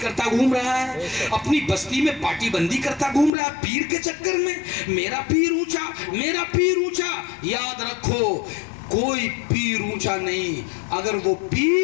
کرتا گھوم رہا ہے, اپنی بستی میں پارٹی بندی کرتا گھوم رہا ہے پیر کے چکر میں. میرا پیر اونچا, میرا پیر اونچا. یاد رکھو کوئی پیر اونچا نہیں, اگر وہ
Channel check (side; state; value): right; drops out; at 3.3 s